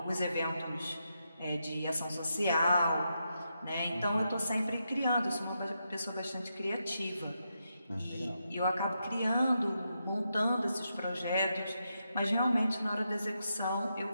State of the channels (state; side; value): inverted; both; correlation -0.84